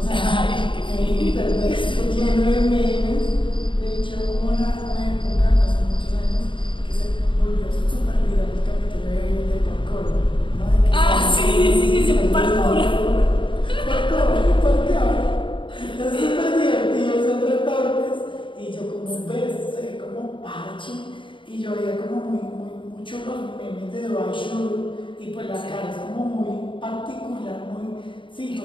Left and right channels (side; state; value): right; late; 0.24 ms